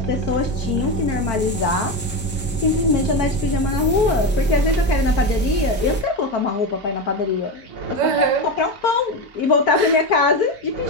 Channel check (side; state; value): both; normal; correlation 0.16